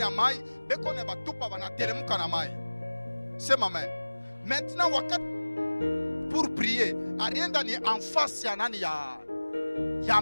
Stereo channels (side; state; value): both; inverted; correlation -1.00